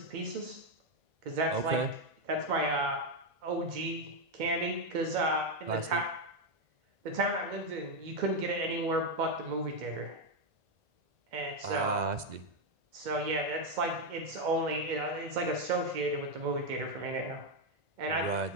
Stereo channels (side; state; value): left; late; 2.0 ms